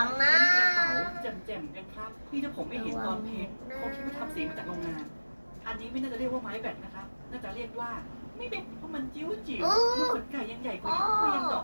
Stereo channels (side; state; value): both; inverted; correlation -1.00